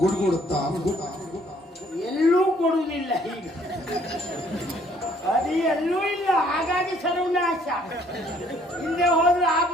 ಎಲ್ಲೂ ಕೊಡುವುದಿಲ್ಲ. ಈಗ ಅದು ಎಲ್ಲೂ ಇಲ್ಲ. ಹಾಗಾಗಿ ಸರ್ವನಾಶ. ಹಿಂದೆ ಹೋದ್ರೆ ಆ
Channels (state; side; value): normal; both; correlation 0.62